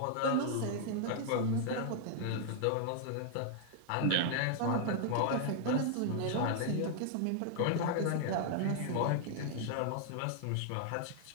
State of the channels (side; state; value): both; different; correlation 0.00